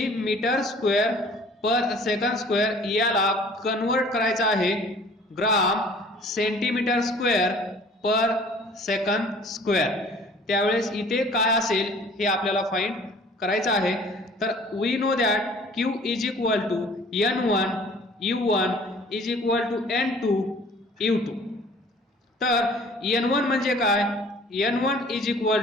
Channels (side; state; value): both; normal; correlation 0.51